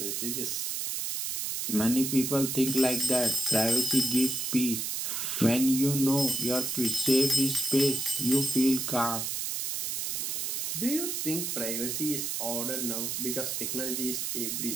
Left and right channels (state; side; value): noise; right; hiss, 2 dB below the sound